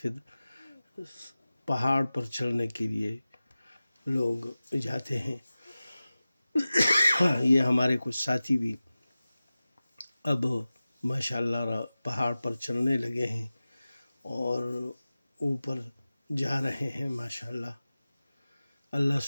پھر پہاڑ پر چڑھنے کے لیے لوگ جاتے ہیں۔ یہ ہمارے کچھ ساتھی بھی اب ماشاءاللہ پہاڑ پر چڑھنے لگے ہیں اور اوپر جا رہے ہیں ماشاءاللہ۔ اللہ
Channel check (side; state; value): both; inverted; correlation -0.96